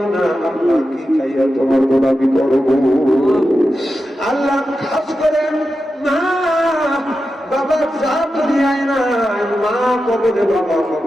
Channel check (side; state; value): both; normal; correlation 0.90